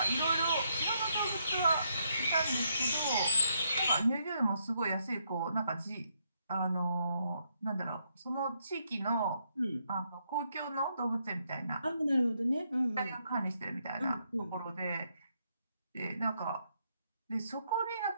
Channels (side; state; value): both; inverted; correlation -0.76